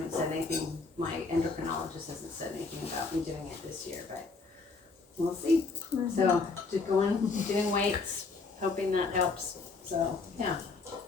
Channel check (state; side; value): quieter; right; 4.1 dB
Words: said anything, my endocrinologist hasn't said anything about me doing it this year, but we'll see. So, just doing weights, hoping that helps, so, yeah.